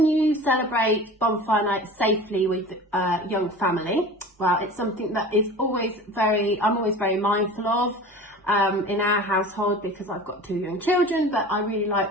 you celebrate bonfire night safely with a young family? Well, it's something that is I'm always very mindful of in our household because I've got 2 young children, but I really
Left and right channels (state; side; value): normal; both; correlation 0.37